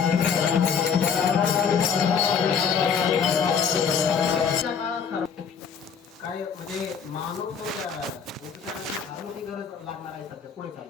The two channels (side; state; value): right; quieter; 6.6 dB